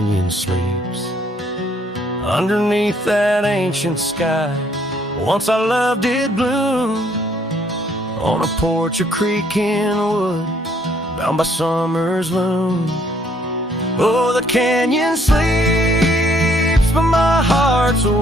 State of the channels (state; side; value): normal; both; correlation 0.66